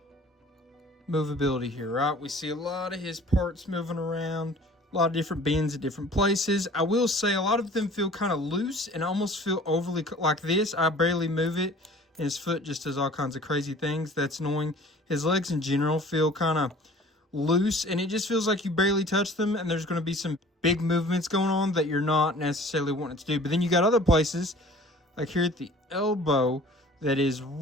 movability here, right? We see a lot of his parts moving around, a lot of different bends at different places. I will say a lot of them feel kind of loose and almost feel overly like this. I barely move it, and his foot just does all kinds of crazy things. That's annoying. His legs in general feel kind of loose, and it just feels like you barely touch them, and there's going to be some big movements going on that you're not necessarily wanting to do. But then you got other places, like here at the elbow, that is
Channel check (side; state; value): both; normal; correlation 0.48